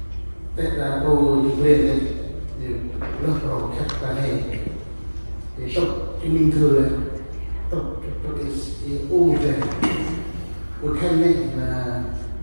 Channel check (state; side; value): inverted; both; correlation -1.00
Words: tết là tôi về đây thì lớp đầu khách ta này thì tóc cái mình thừa này tóc cái u này của khách này là